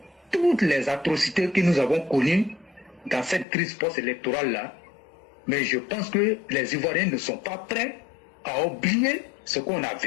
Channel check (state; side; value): drops out; right; at 3.5 s